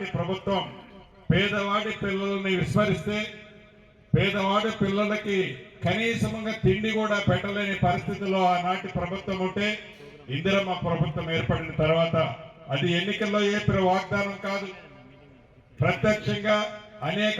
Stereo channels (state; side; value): identical; both; correlation 1.00